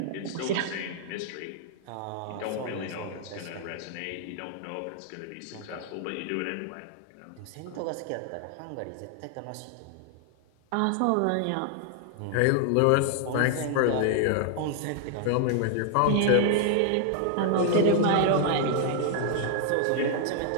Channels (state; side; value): different; both; correlation 0.00